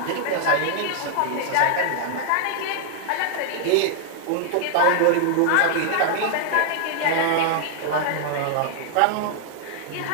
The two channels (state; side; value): different; both; correlation 0.00